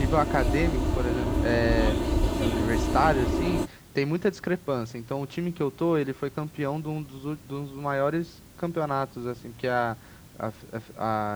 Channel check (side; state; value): both; identical; correlation 1.00